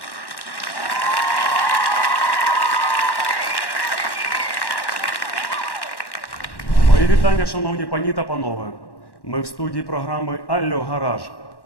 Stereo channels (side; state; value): right; late; 1.1 ms